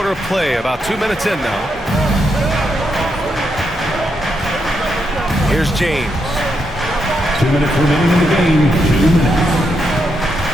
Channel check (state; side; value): normal; both; correlation 0.81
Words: of play, about 2 minutes in now. Here's James. 2 minutes remaining in the game. 2 minutes.